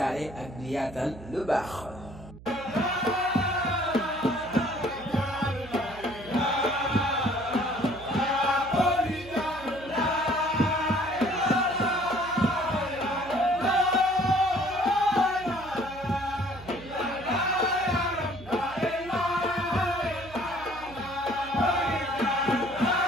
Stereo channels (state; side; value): noise; right; hum, 18 dB below the sound